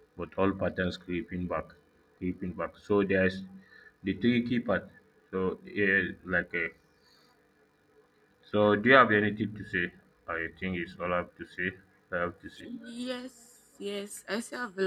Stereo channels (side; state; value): both; identical; correlation 1.00